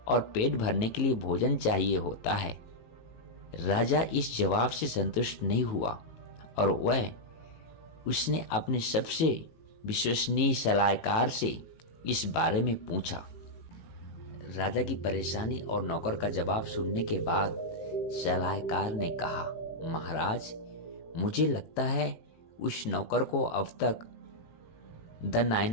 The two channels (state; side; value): late; right; 18 ms